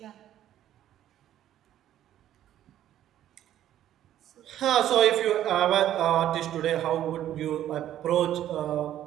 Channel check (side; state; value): left; quieter; 11.9 dB